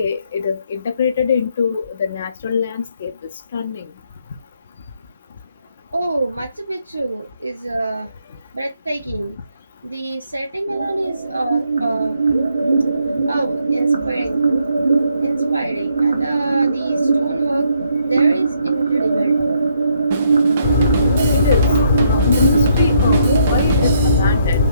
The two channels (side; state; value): both; inverted; correlation -0.72